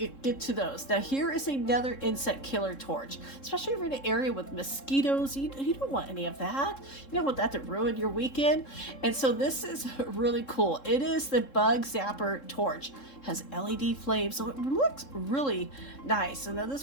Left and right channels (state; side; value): late; right; 3.7 ms